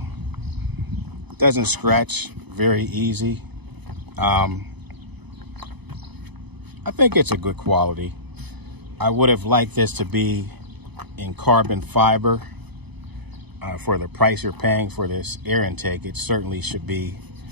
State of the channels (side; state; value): left; late; 0.99 ms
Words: Doesn't scratch very easy. I think it's a good quality. I would have liked this to be in carbon fiber. For the price you're paying for this air intake, it certainly should be